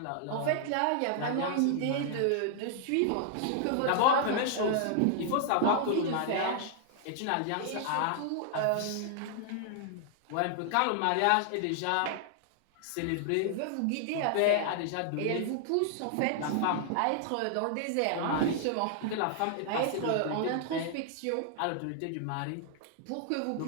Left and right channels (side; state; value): both; different; correlation 0.00